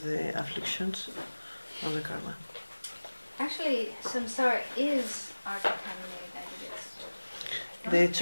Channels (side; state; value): both; inverted; correlation -1.00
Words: the afflictions of the karma. Actually, samsara is our contaminated aggregates. De